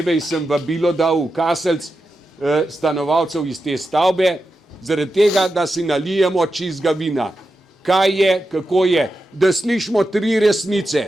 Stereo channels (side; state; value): both; normal; correlation 0.89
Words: sem vabilo dal v Kaselc stanovalcev iz te stavbe, zaradi tega, da si nalijemo čistega vina. Kaj je, kako je, da slišimo tri